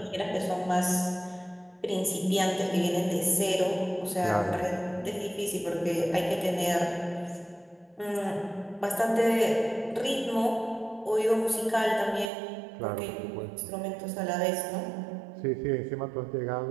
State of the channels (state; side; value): drops out; left; at 12.3 s